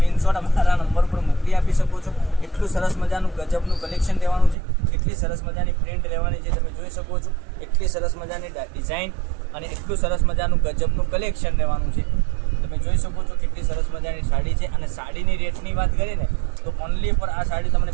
અમારા નંબર પર મોકલી આપી શકો છો. એટલું સરસ મજાનું ગજબનું કલેક્શન લેવાનું છે. એટલી સરસ મજાની પ્રિન્ટ લેવાની છે, તમે જોઈ શકો છો. એટલી સરસ મજાની ડિઝાઇન અને એટલું સરસ મજાનું ગજબનું કલેક્શન લેવાનું છે. તમે જોઈ શકો છો કેટલી સરસ મજાની સાડી છે. અને સાડીની રેટની વાત કરીએ ને તો ઓનલી પર આ સાડી તમને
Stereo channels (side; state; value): left; drops out; at 4.5 s